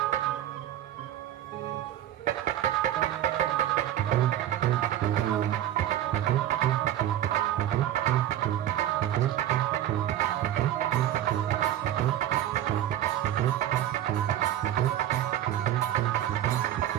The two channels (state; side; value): quieter; left; 12.1 dB